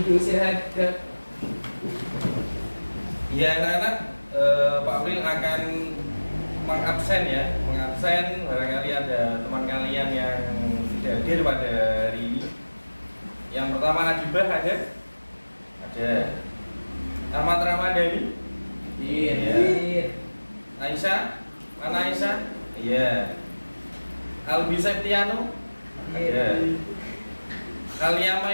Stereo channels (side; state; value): both; inverted; correlation -1.00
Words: Untuk istirahat gerak. Ya anak-anak, Pak April akan mengabsen ya, mengabsen barangkali ada teman kalian yang tidak hadir pada hari ini. Yang pertama Adibah ada? Ada. Ahmad Ramadhani? Iya. Aisyah? Mana Aisyah? Iya. Albi Septiano? Ada. Alia